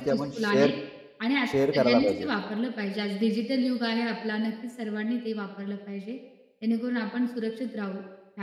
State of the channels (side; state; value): both; identical; correlation 1.00